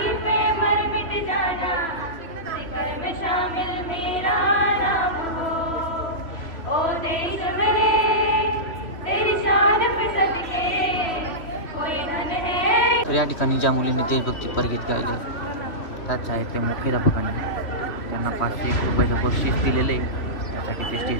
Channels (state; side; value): late; right; 2.9 ms